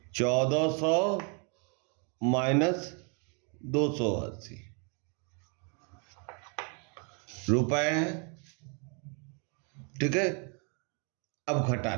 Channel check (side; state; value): left; quieter; 36.6 dB